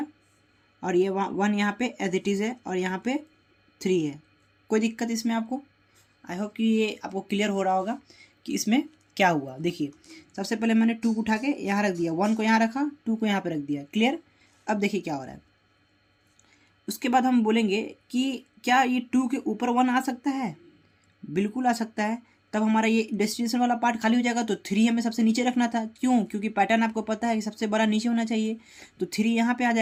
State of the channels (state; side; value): identical; both; correlation 1.00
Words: और ये 1 यहाँ पे एज इट इज़ है और यहाँ पे 3 है। कोई दिक्कत इसमें आपको? आई होप कि ये आपको क्लियर हो रहा होगा कि इसमें क्या हुआ। देखिए सबसे पहले मैंने 2 को उठा के यहाँ रख दिया, 1 को यहाँ रखा, 2 को यहाँ पे रख दिया। क्लियर। अब देखिए क्या हो रहा है, उसके बाद हम बोलेंगे कि क्या ये 2 के ऊपर 1 आ सकता है? बिल्कुल आ सकता है। तब हमारा ये डेस्टिनेशन वाला पार्ट खाली हो जाएगा। तो 3 हमें सबसे नीचे रखना था। क्यों? क्योंकि पैटर्न आपको पता है कि सबसे बड़ा नीचे होना चाहिए। तो 3 यहाँ पे आ